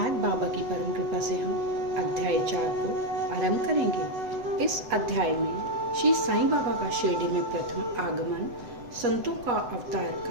बाबा की परम कृपा से हम अध्याय 4 को आरंभ करेंगे। इस अध्याय में श्री साईं बाबा का शिरडी में प्रथम आगमन, संतों का अवतार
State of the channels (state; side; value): late; left; 7.9 ms